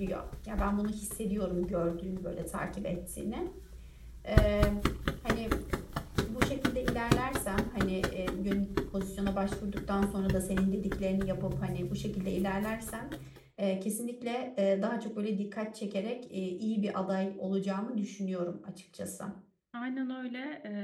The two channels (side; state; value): both; identical; correlation 1.00